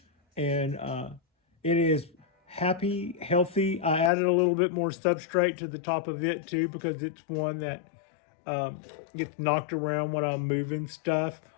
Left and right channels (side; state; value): right; drops out; at 4.1 s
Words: and it is happy, healthy. I added a little bit more substrate to the top of it too because it's one that gets knocked around when I'm moving stuff,